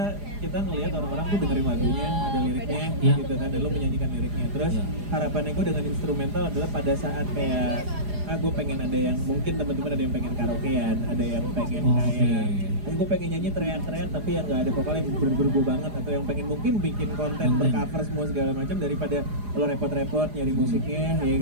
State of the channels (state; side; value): late; left; 4.9 ms